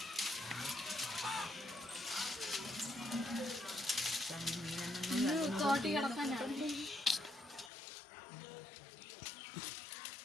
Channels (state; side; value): drops out; right; at 7.7 s